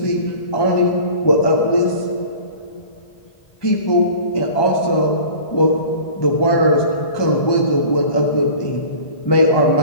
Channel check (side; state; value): right; late; 1.2 ms